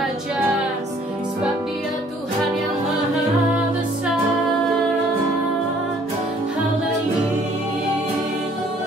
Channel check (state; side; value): normal; both; correlation 0.59